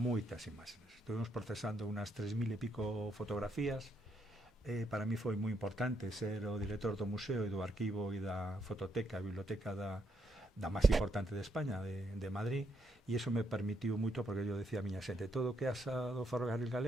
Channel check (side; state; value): both; normal; correlation 0.77